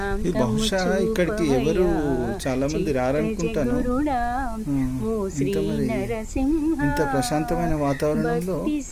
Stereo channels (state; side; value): identical; both; correlation 1.00